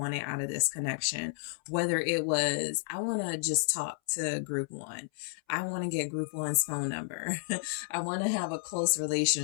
out of this connection. Whether it was, I want to just talk to Group One. I want to get Group One's phone number. I want to have a close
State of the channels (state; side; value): silent; right; 57 dB below the other